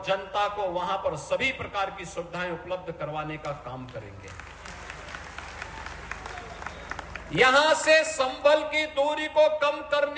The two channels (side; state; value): both; identical; correlation 1.00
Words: जनता को वहां पर सभी प्रकार की सुविधाएं उपलब्ध करवाने का काम करेंगे। यहां से संभल की दूरी को कम